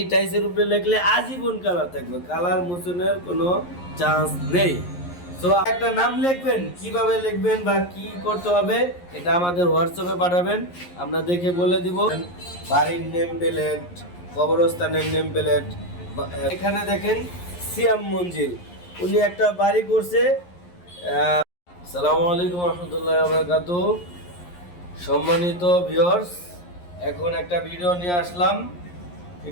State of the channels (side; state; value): right; late; 11 ms